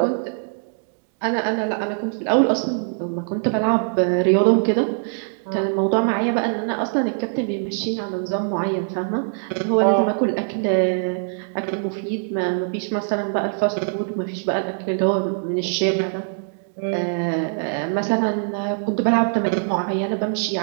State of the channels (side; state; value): left; silent; digital silence